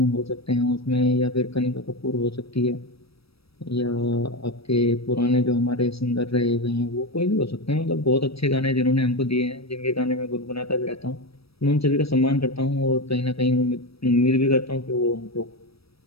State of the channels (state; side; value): late; right; 0.77 ms